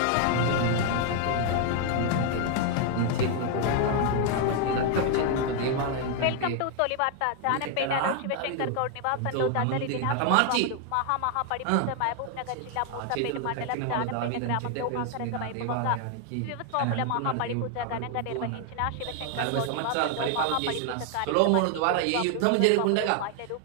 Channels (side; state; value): both; different; correlation 0.00